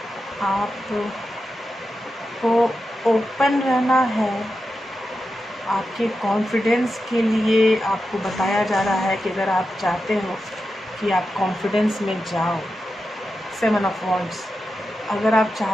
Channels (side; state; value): both; normal; correlation 0.90